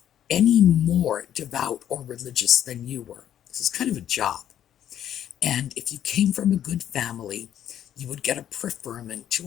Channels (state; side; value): quieter; right; 10.5 dB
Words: any more devout or religious than you were. This is kind of a job. And if you came from a good family, you would get a preferment